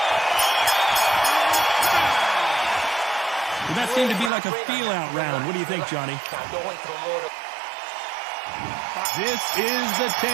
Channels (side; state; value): left; drops out; at 4.3 s